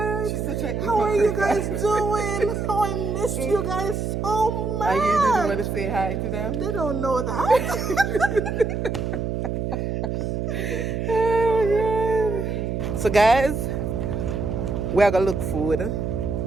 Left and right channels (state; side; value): noise; right; hum, 2 dB below the sound